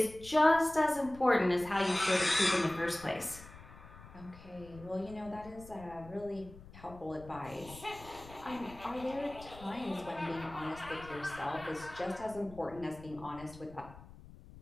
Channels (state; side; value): noise; left; rumble, 18 dB below the sound